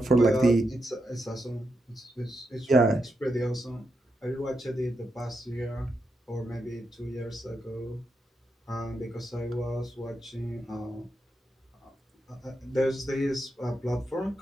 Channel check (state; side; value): normal; both; correlation 0.85